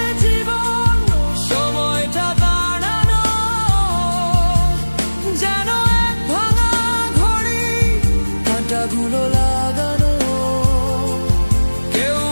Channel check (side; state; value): both; inverted; correlation -1.00